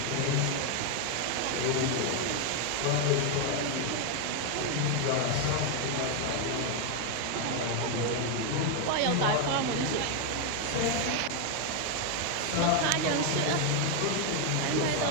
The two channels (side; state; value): both; different; correlation 0.01